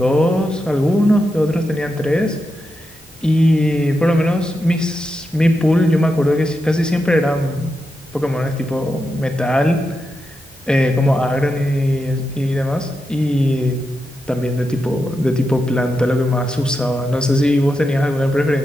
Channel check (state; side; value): normal; both; correlation 0.87